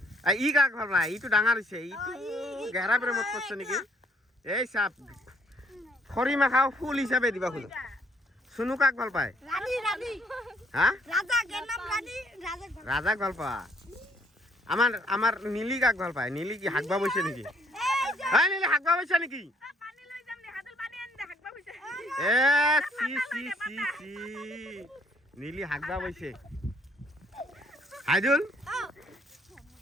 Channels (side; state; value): both; normal; correlation 0.67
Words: ই কাক ভাল পায় ইটো ডাঙৰ হৈছে ইটো গেহৰা প্ৰেমত পড়ছে নেকি এই সাপ খৰি মাখাও ফুল হিচাপে দিবা খুলো সুনু কাক ভাল পায় রানী রানী হ্যাঁ রাজা এর নাম রানী রাজা রাজাক ভাল পা আমার আমার নীলি কাক ভাল পায় নীলি কি হাগবা বইছে নেকি হ্যাঁ নীলি হাগবা বইছে নেকি পানি লই যাম নে হাতল পানি আন দে হাগবা হইছে এ সি সি সি সি নীলি হাগবা বইছে হাইদুল